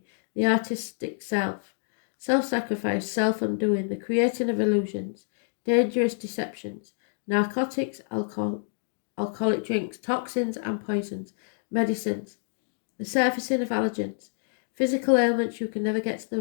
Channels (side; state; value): right; silent; digital silence